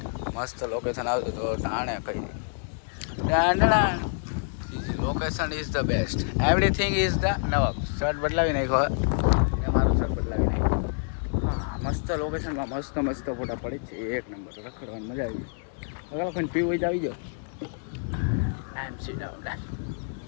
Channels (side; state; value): right; silent; digital silence